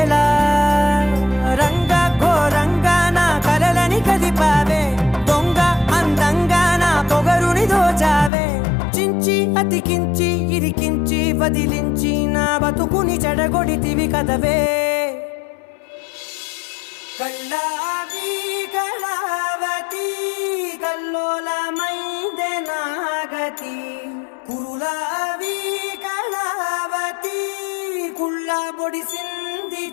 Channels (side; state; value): right; drops out; at 8.3 s